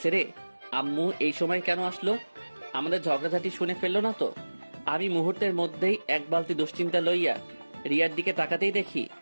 রে। আম্মু এই সময় কেন আসলো? আমাদের ঝগড়াঝাটি শুনে ফেললো না তো? আমি মুহূর্তের মধ্যেই এক বালতি দুশ্চিন্তা লইয়া রিয়ার দিকে তাকাতেই দেখি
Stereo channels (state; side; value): inverted; both; correlation -1.00